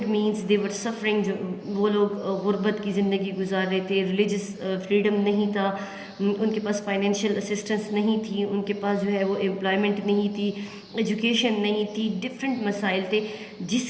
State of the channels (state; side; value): identical; both; correlation 1.00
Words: means, they were suffering, جو وہ لوگ غربت کی زندگی گزار رہے تھے، ریلیجس فریڈم نہیں تھا، ان کے پاس فائنینشیل اسسٹنس نہیں تھی، ان کے پاس جو ہے وہ امپلائمنٹ نہیں تھی، ایجوکیشن نہیں تھی، ڈفرینٹ مسائل تھے، جس